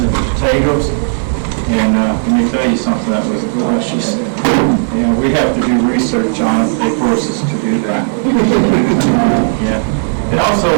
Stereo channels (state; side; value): silent; left; digital silence